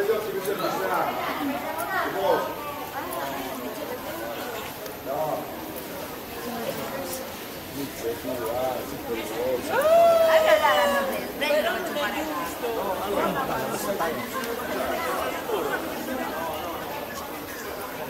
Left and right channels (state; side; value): identical; both; correlation 1.00